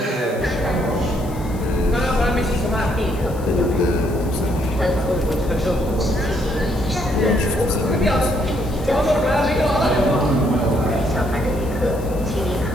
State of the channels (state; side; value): noise; left; hiss, 21 dB below the sound